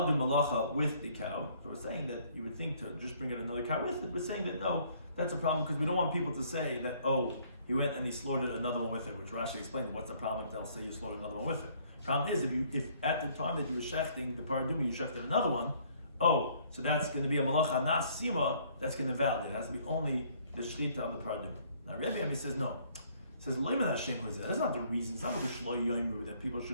do malacha with the cow. So we're saying that you would think to just bring in another cow with it. We're saying that no, that's a problem because we don't want people to say that, oh, he went and he slaughtered another one with it, which Rashi explained what's the problem if they'll say you slaughtered another one with it. Problem is, if at the time that you were shechting the paraduma, you shechted another one, oh, so that's going to be a malacha nasima, that's going to invalidate. It has to be only the shrita of the paraduma. Now Rabbi Yomi says no. He says, that's not the reason. It's not Rabbi Shloimy Schwartzberg that people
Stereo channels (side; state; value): both; inverted; correlation -0.61